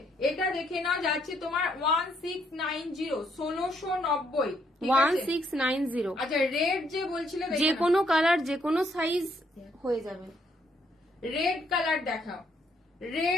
এটা দেখে নাও, যাচ্ছে তোমার 1690, 1690, 1690। আচ্ছা রেড যে বলছিলে, যে কোনো কালার, যে কোনো সাইজ হয়ে যাবে। রেড কালার দেখাও,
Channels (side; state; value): both; normal; correlation 0.71